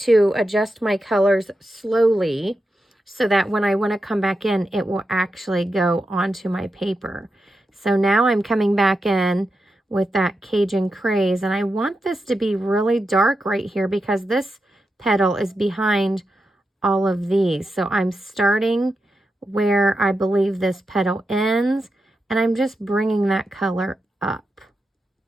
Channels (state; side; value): normal; both; correlation 0.88